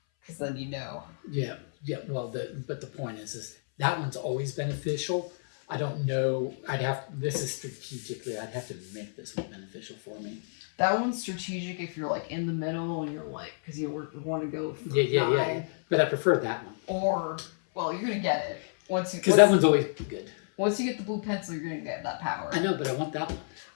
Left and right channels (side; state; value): right; silent; 58 dB below the other